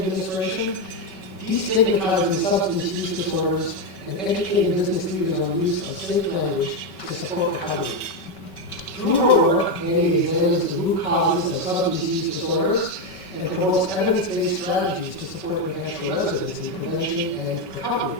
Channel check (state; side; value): late; right; 5.3 ms